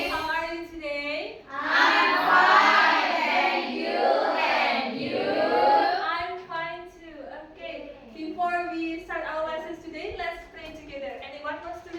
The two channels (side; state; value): both; identical; correlation 1.00